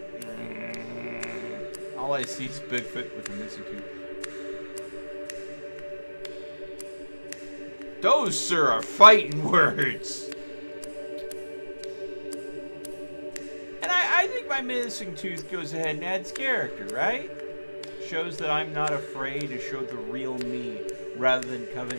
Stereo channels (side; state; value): both; inverted; correlation -1.00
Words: All I see is Bigfoot with a missing tooth. Those, sir, are fighting words. And I think my missing tooth goes ahead and adds character, right? Shows that I'm not afraid to show the real me, rather than